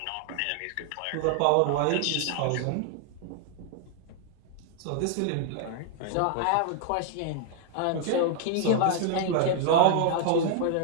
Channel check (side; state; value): both; different; correlation 0.00